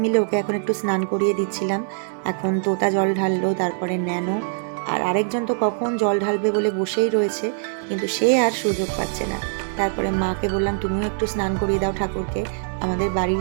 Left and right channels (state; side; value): silent; left; 59 dB below the other